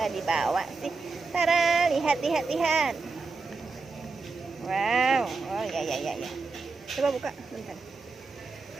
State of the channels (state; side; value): quieter; left; 4.1 dB